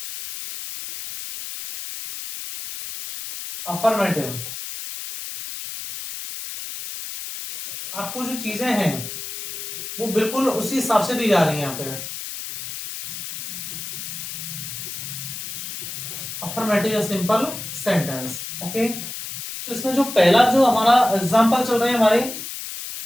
अफर्मेटिव, आपको जो चीजें हैं वो बिल्कुल उसी हिसाब से दी जा रही है यहाँ पे। अफर्मेटिव या सिंपल सेंटेंस। ओके, तो इसमें जो पहला जो हमारा एग्जांपल चल रहे हैं हमारे,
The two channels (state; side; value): noise; left; hiss, 8 dB below the sound